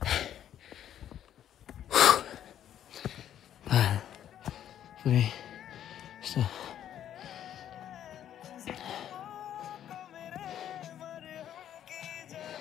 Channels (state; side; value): quieter; right; 10.6 dB